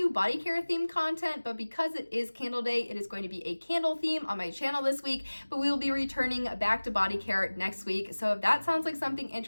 body care themed content, but because it is Candle Day, it is going to be a candle theme on my channel this week, but we will be returning back to body care next week. So if that sounds like something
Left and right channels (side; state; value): both; inverted; correlation -1.00